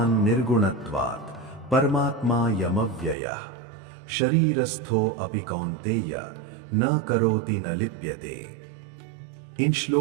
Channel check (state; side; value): drops out; left; at 3.2 s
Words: निर्गुणत्वात् परमात्मा यमव्ययः शरीरस्थो अपि कौन्तेय न करोति न लिप्यते। इन